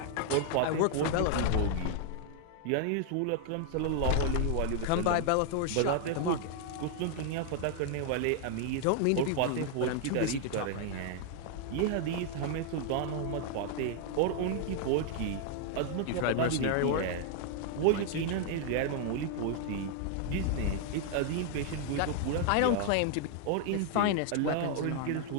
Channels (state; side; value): different; both; correlation 0.00